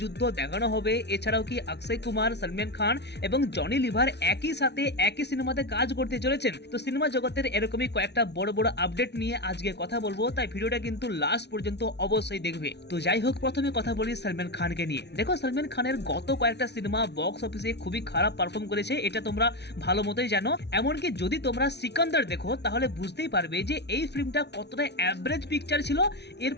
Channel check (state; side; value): late; right; 0.50 ms